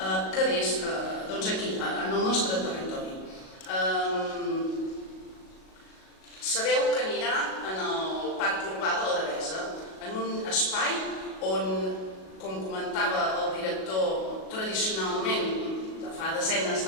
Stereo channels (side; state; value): right; late; 37 ms